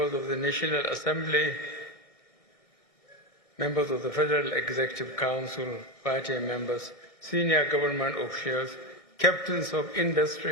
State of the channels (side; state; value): right; late; 1.6 ms